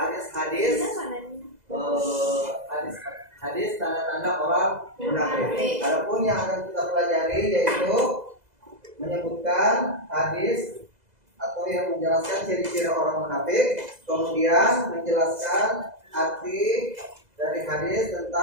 tanda-tanda orang munafik. Adapun yang akan kita pelajari yaitu menyebutkan hadis atau yang menjelaskan ciri-ciri orang munafik, kemudian menjelaskan arti dari hadis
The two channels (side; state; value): left; late; 2.0 ms